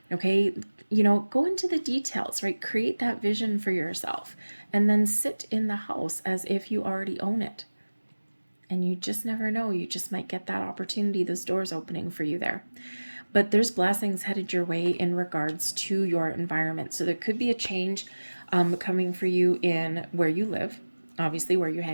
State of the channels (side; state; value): both; inverted; correlation -1.00